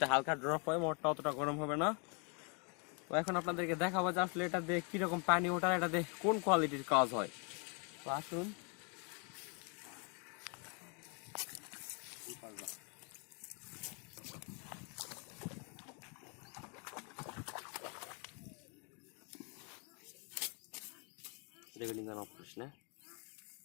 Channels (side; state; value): right; quieter; 36.0 dB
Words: হালকা ড্রপ হয়, মোটরটা অতটা গরম হবে না। তো এখন আপনাদেরকে দেখাবো যে আসলে এটা দিয়ে কিরকম পানি ওঠার, এটা দিয়ে কোন কোয়ালিটির কাজ হয়। তো আসুন। রেগুলিং অফ করিস না।